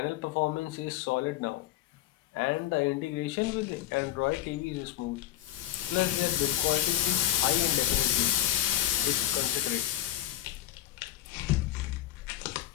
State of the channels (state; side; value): quieter; right; 12.9 dB